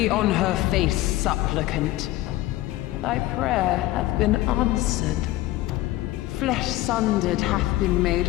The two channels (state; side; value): quieter; right; 16.6 dB